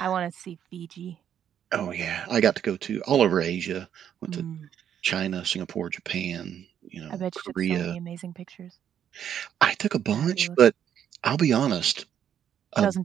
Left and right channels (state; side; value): quieter; left; 9.4 dB